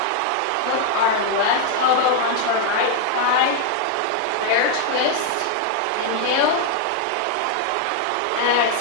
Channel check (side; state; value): both; different; correlation 0.00